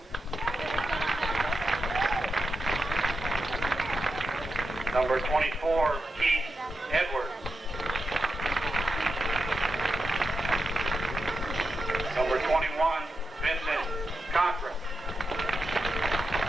Number 24, Keith Edwards. Number 21, Vincent Cochran.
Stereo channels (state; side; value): normal; both; correlation 0.88